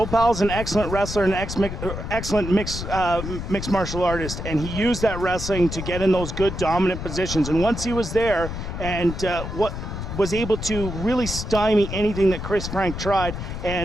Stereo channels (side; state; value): left; noise; rumble, 6 dB below the sound